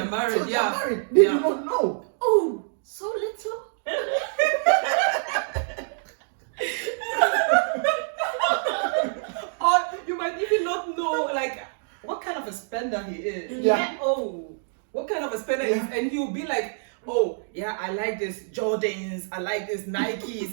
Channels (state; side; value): silent; left; digital silence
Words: are married. They are married. They do not know. Oh, so little. Or you might even not know, like, what kind of a spender he is. Yeah. Oh, what kind of a spender Yeah. is? And he'll be like, oh, yeah, I like this Jordans, I like this